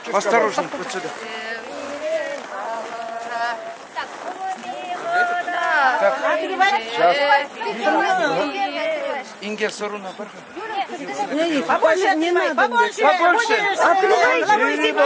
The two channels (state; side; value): identical; both; correlation 1.00